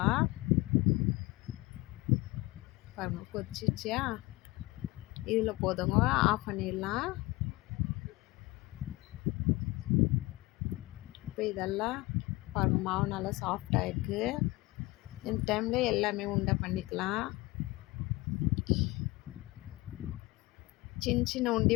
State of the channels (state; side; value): quieter; right; 21.2 dB